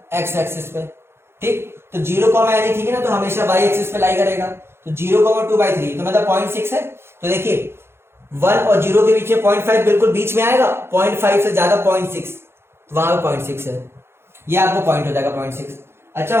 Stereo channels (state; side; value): late; left; 0.12 ms